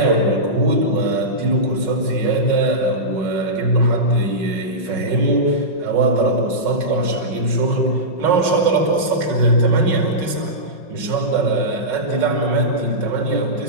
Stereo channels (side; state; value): left; late; 5.4 ms